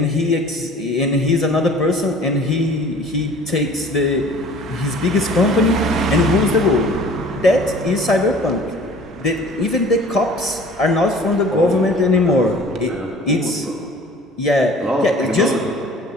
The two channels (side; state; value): both; normal; correlation 0.48